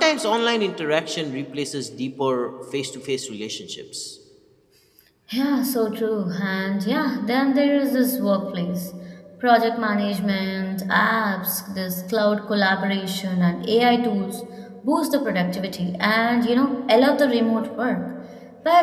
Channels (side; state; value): both; identical; correlation 1.00